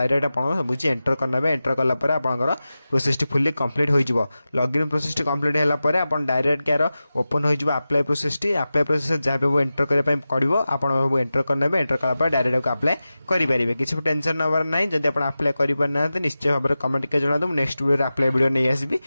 आप सब एंटर करने। एंटर कलापर आपंकर प्रोसेस टी फुल्ली कंप्लीट हो। लॉगिन प्रोसेस टी कंप्लीट होगापर आप डायरेक्ट यार ओपन हो apply process T. Apply process जहाँ भी एंटर करने पड़ो आप एंटर करने। एंटर कलापर डायरेक्ट अप्लाई करेंगे। किसी भी टेंशन नवर ना जब आप अप्लाई करना निश्चय भाव में कमेंट के जना दूँ नेक्स्ट वीडियो अप्लाई वीडियो नहीं आसबि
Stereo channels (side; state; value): both; inverted; correlation -0.94